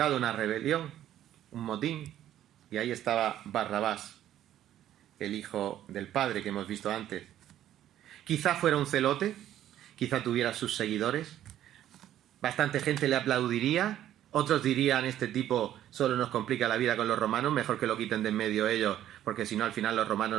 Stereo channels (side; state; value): left; quieter; 11.9 dB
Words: una rebelión, un motín, y ahí estaba Barrabás, el hijo del padre que hemos visto antes. Quizá fuera un celote, quizá tuviera sus seguidores, bastante gente le aplaudiría, otros dirían: este tipo solo nos complica la vida con los romanos, mejor que lo quiten de en medio ellos, porque si no al final los